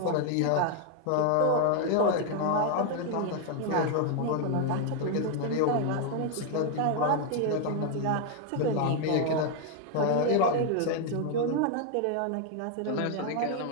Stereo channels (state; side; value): different; both; correlation 0.00